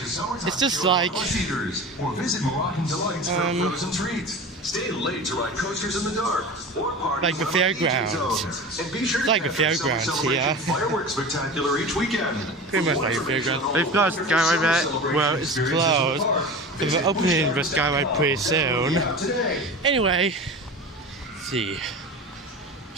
It's just like Stay late to ride coasters in the dark or party like the fairgrounds. It's like the fairgrounds here. Fireworks spectacular each weekend. Pretty much like the fairgrounds. They've got a skyride there. Well, it's closed. But they're opening the skyride pretty soon. Anyway, let's see.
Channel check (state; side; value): normal; both; correlation 0.32